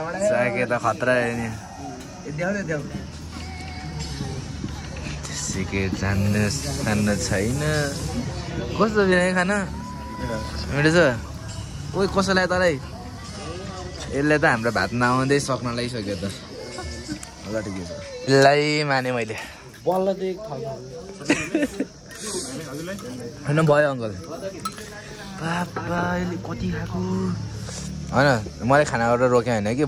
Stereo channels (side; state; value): both; identical; correlation 1.00